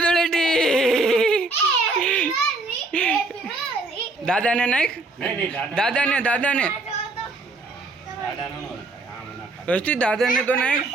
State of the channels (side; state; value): left; quieter; 3.3 dB